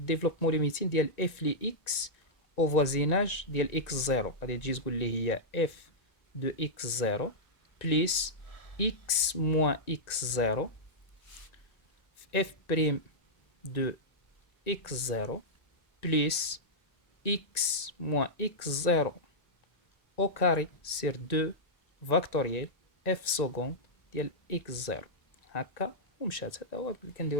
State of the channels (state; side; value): late; right; 1.9 ms